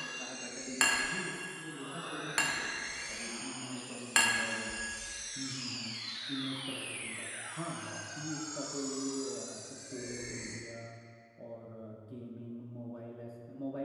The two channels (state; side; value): identical; both; correlation 1.00